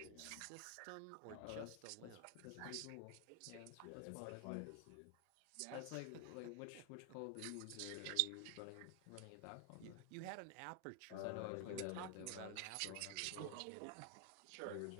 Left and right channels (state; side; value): different; both; correlation 0.00